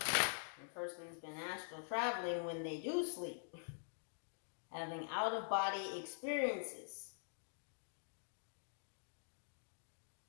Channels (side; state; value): right; silent; digital silence